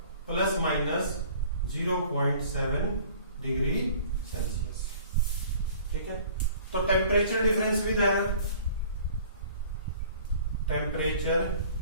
प्लस माइनस 0.7 डिग्री सेल्सियस, ठीक है। तो temperature difference with error, temperature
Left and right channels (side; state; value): both; inverted; correlation -0.50